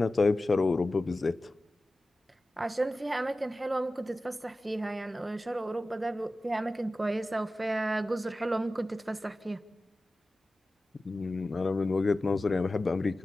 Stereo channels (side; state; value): both; normal; correlation 0.95